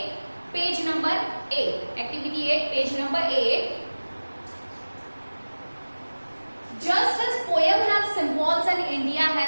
page number 8, activity 8 page number 8। Just as poem have symbols and India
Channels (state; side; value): inverted; both; correlation -1.00